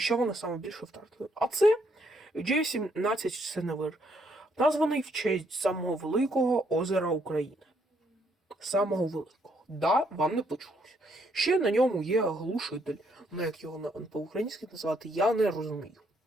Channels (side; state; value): both; normal; correlation 0.72